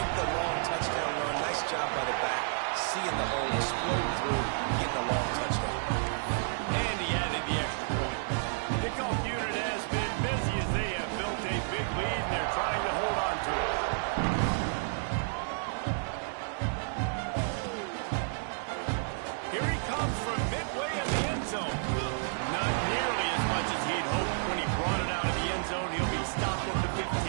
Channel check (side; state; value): left; silent; 57 dB below the other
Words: the long touchdown run. Nice job by the back. Seeing the hole, explode through, getting a long touchdown. And he added the extra point. Kickoff unit has been busy as they have built a big lead, and they're trying to hold on to it. Here he comes from midway in the end zone. Not nearly as much as he'd hoped when he brought it out of the end zone. He'll be stopped at the